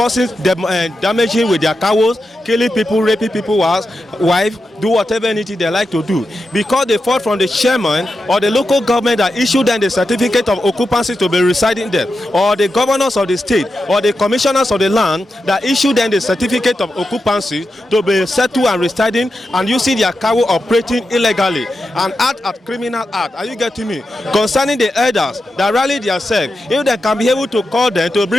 damaging with their cows, killing people, raping people's wives, do whatever anything they like to do. Because they fought from the chairman or the local government that issued them the certificate of occupancy to be residing there, or the governors of the state, or the commissioners of the land that issued them the certificate of occupancy to be settled and residing and using their cow operating illegally and act criminal act. Are you getting me? Concerning the elders that rally themselves, if they can be able to call them to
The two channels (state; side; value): normal; both; correlation 0.89